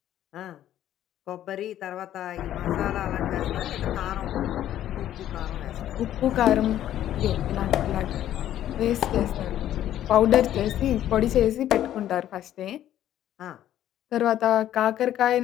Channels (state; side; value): quieter; right; 11.9 dB